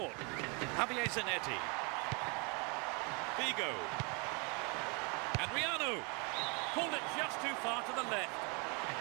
Javier Zanetti. Figo. Adriano. Pulled it just too far to the left.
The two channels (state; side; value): quieter; left; 32.4 dB